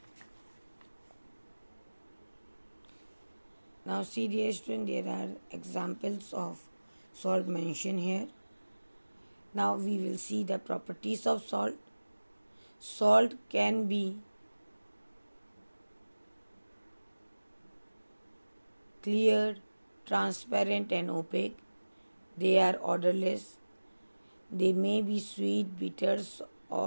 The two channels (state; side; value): inverted; both; correlation -1.00